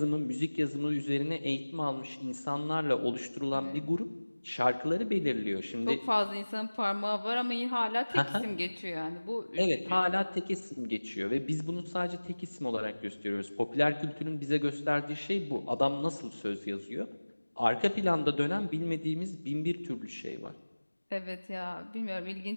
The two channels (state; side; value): inverted; both; correlation -1.00